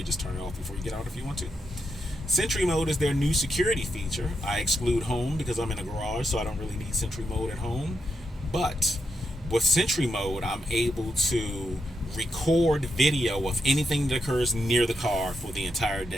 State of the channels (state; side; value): normal; both; correlation 0.83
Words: just turn it off before you get out if you want to. Sentry mode is their new security feature. I exclude home because I'm in a garage, so I don't really need Sentry mode at home. But with Sentry mode, I'm able to record video of anything that occurs near the car for the entire